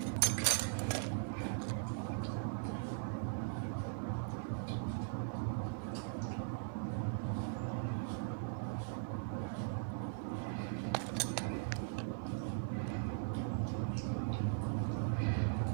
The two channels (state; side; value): silent; left; 51 dB below the other